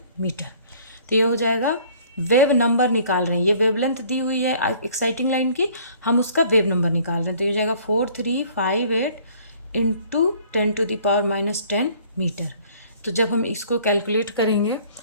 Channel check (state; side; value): inverted; both; correlation -0.55